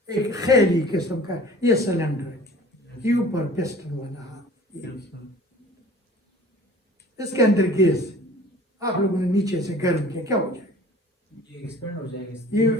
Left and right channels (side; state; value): both; normal; correlation 0.46